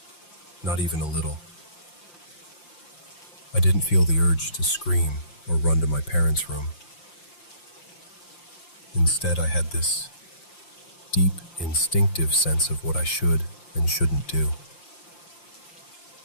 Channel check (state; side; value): late; right; 5.7 ms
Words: not even a little. I didn't feel the urge to scream or run to my parents' room. Instead, I had this deep, instinctive sense of what I should and shouldn't do.